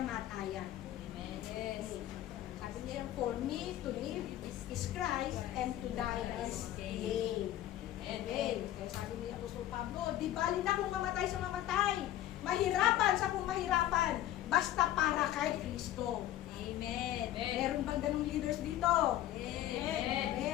Amen. Yes. Sabi Sabi niya, for me to live is Christ and to die is gain. Amen. Kaya sabi niya, Apostol Pablo, di bali na kung mamatay sa mamatay. Mahirapan sa kung mahirapan. Basta para kay Kristo. Amen. Meron bang ganung leaders dito? Amen.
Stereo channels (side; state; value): right; quieter; 13.3 dB